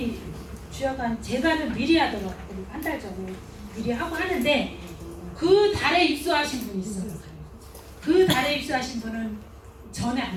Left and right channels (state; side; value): identical; both; correlation 1.00